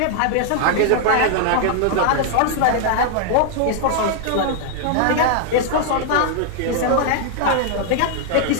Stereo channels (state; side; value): different; both; correlation -0.01